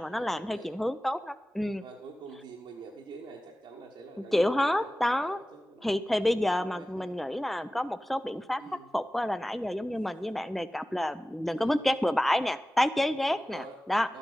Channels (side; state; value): both; normal; correlation 0.96